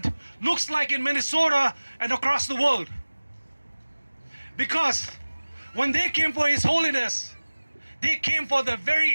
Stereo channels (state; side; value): inverted; both; correlation -1.00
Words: looks like in Minnesota and across the world. Because when they came for His Holiness, they came for the